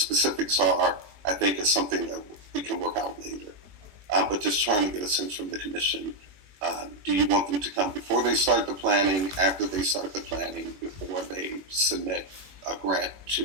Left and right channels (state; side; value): late; left; 21 ms